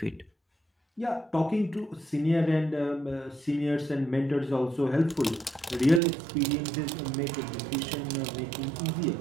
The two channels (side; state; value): left; drops out; at 6.0 s